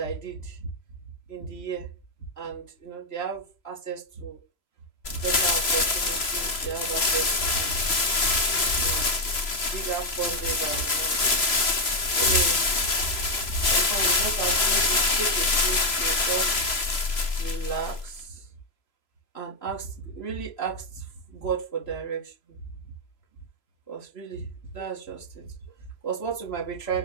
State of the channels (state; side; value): late; right; 3.0 ms